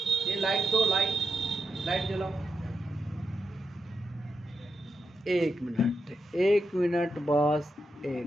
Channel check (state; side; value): normal; both; correlation 0.86